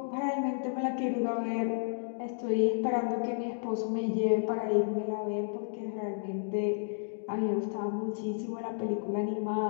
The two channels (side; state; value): right; silent; digital silence